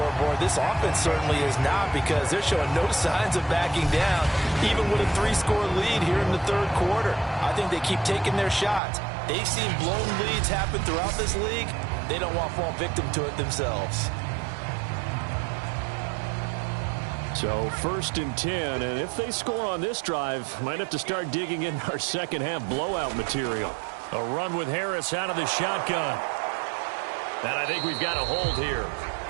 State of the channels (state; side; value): drops out; left; at 8.8 s